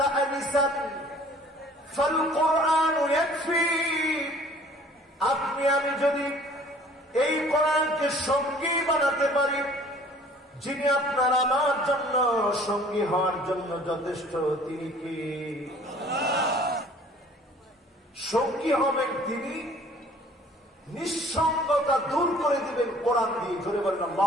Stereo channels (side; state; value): both; normal; correlation 0.52